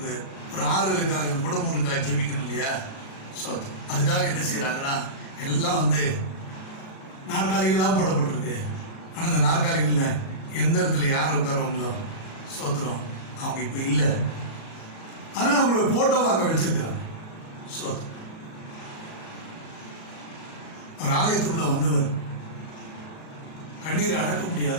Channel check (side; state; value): right; late; 37 ms